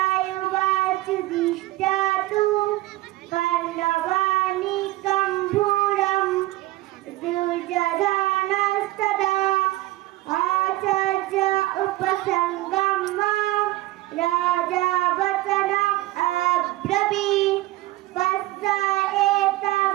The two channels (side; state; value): left; quieter; 17.8 dB